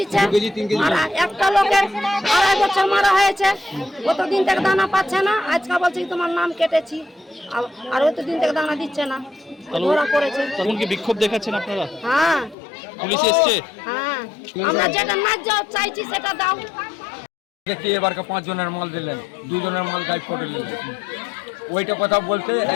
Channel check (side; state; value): right; drops out; at 12.6 s